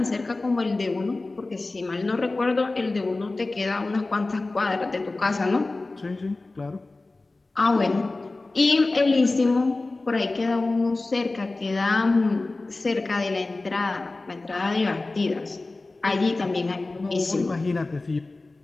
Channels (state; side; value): quieter; right; 3.2 dB